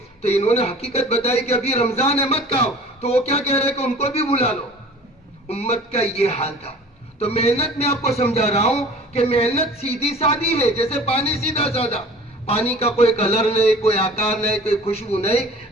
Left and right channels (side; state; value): both; normal; correlation 0.44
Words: تو انہوں نے حقیقت بتائی کہ ابھی رمضان ہے, مت کھاؤ. تو وہ کیا کہہ رہے کہ ان کو بھی بلا لو. امت کا یہ حال تھا. تو محنت میں آپ کو سمجھا رہا ہوں کہ محنت سیدھی سادی ہے, جیسے پانی سیدھا سادہ. پانی کا کوئی کلر نہیں, کوئی آکار نہیں, کوئی خوشبو نہیں,